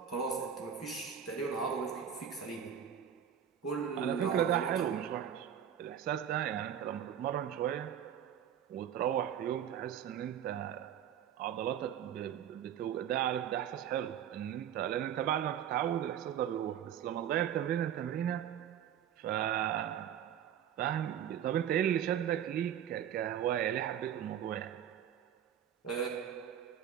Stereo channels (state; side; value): quieter; left; 9.4 dB